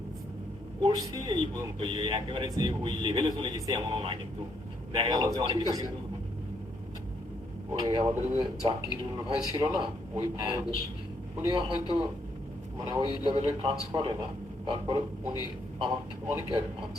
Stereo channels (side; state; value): both; normal; correlation 0.73